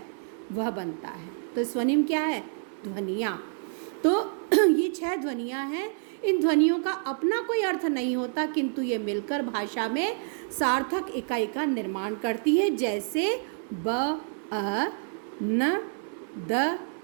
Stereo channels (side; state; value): left; silent; 59 dB below the other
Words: वह बनता है। तो स्वनिम क्या है? ध्वनियाँ। तो ये 6 ध्वनियाँ हैं। इन ध्वनियों का अपना कोई अर्थ नहीं होता, किंतु ये मिलकर भाषा में सार्थक इकाई का निर्माण करती है। जैसे ब, अ, न, द,